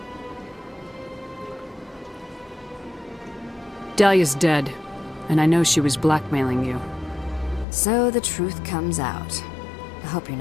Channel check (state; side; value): drops out; right; at 7.7 s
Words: Dahlia's dead, and I know she was blackmailing you. So the truth comes out. I hope you're